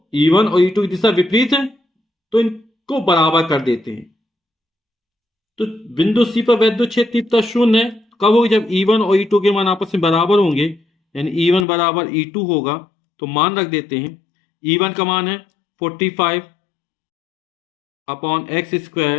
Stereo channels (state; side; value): drops out; right; at 11.7 s